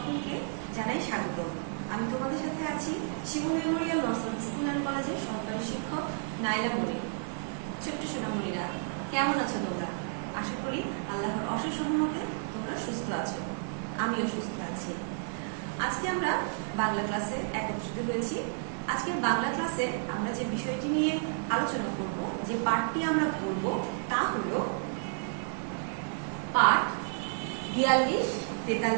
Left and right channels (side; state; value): left; silent; digital silence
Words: জানাই স্বাগত। আমি তোমাদের সাথে আছি শিমুল মেমোরিয়াল নর্সারি স্কুল অ্যান্ড কলেজের সহকারী শিক্ষক নাইলা মনির। ছোট্ট সোনামণিরা, কেমন আছো তোমরা? আশা করি আল্লাহর অশেষ রহমতে তোমরা সুস্থ আছো, আমিও সুস্থ আছি। আজকে আমরা বাংলা ক্লাসে একত্রিত হয়েছি। আজকের বাংলা ক্লাসে আমরা যে বিষয়টি নিয়ে আলোচনা করব, যে পাঠটি আমরা পড়ব, তা হলো পাঠ 42,